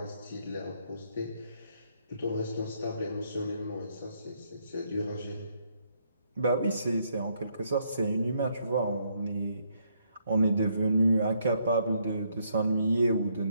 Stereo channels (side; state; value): both; inverted; correlation -0.73